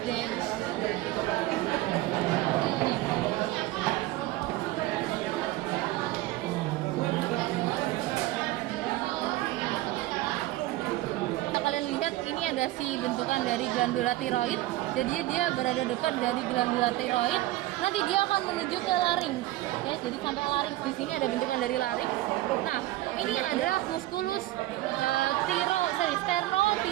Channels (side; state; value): left; quieter; 16.8 dB